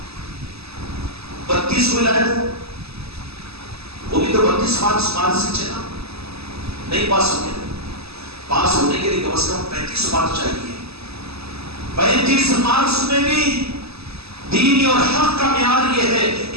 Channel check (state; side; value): late; left; 0.78 ms